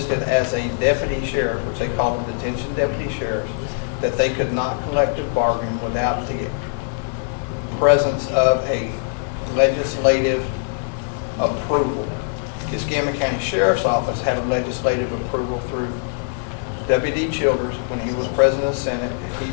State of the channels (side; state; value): right; silent; 64 dB below the other